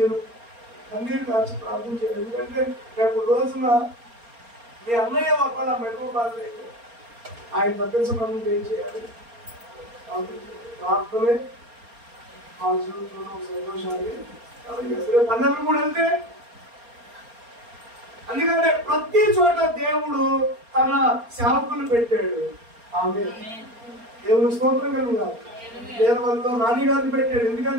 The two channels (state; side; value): late; left; 4.3 ms